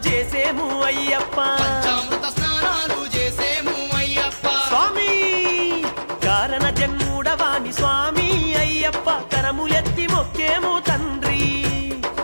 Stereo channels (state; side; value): inverted; both; correlation -1.00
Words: చేసేము అయ్యప్ప పంచామృత స్నానాలు చేసేము అయ్యప్ప స్వామి కారణ జన్ముడవాని స్వామి అయ్యప్ప కరములెత్తి మొక్కేము తండ్రి